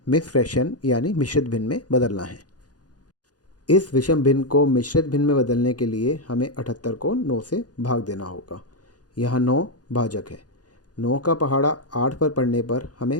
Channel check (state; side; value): late; right; 0.69 ms